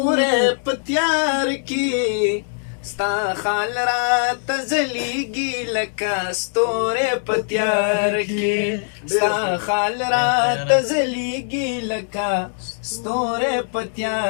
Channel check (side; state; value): right; silent; digital silence